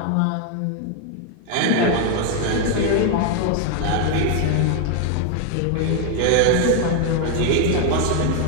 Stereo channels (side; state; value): both; different; correlation 0.01